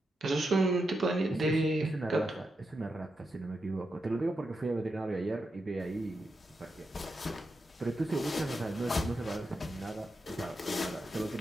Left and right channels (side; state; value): both; normal; correlation 0.86